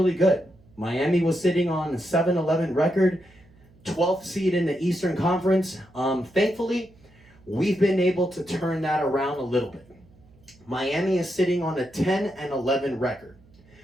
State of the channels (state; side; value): noise; right; hum, 28 dB below the sound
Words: good. Miami was sitting on a 7-11 record, 12th seed in the Eastern Conference. Thankfully, we've been able to turn that around a little bit. Miami is sitting on a 10-11 record.